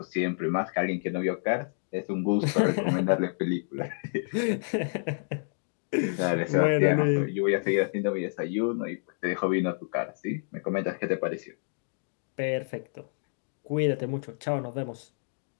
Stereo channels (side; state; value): right; silent; digital silence